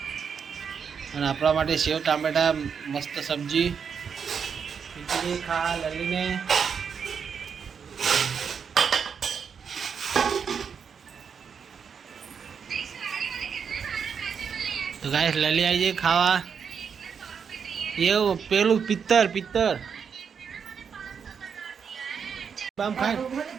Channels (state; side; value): quieter; left; 6.7 dB